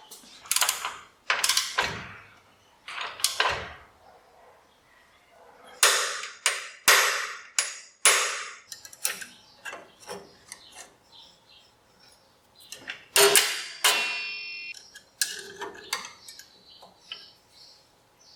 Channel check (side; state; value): both; identical; correlation 1.00